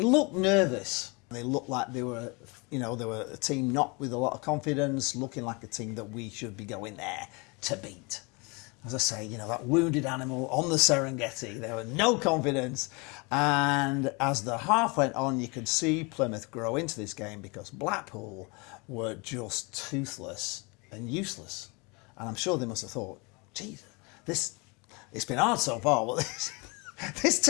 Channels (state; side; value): quieter; right; 29.1 dB